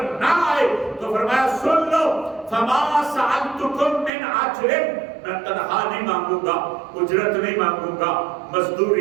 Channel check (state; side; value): drops out; left; at 4.1 s